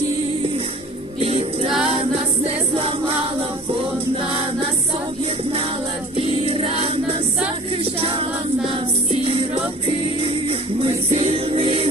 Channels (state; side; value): normal; both; correlation 0.47